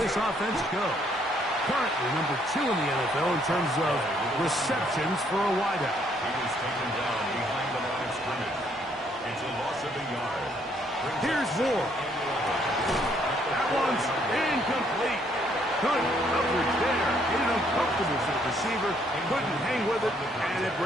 offense go. Currently number 2 in the NFL in terms of receptions for a wideout. He was taken down behind the line of scrimmage. It's a loss of a yard. Here's Ward. That one's incomplete. Good coverage there. Getting uncomfortable for the receiver. Couldn't hang with it, and it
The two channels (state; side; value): normal; both; correlation 0.68